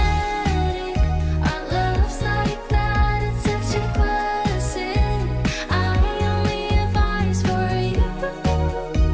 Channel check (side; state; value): both; identical; correlation 1.00